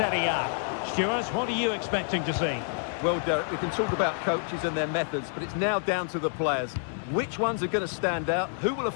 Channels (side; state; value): right; silent; 59 dB below the other